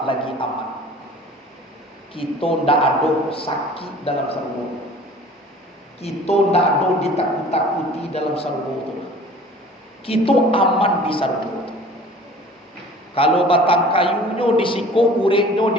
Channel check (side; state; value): both; normal; correlation 0.46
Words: lagi aman. Kita ndak ada sakit dalam surga. Kita ndak ada ditakut-takuti dalam surga itu. Kita aman di surga. Kalau batang kayunya disiko, uretnya